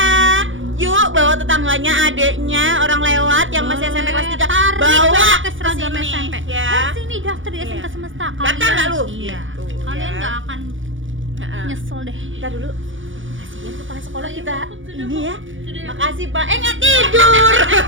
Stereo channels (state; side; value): late; left; 0.57 ms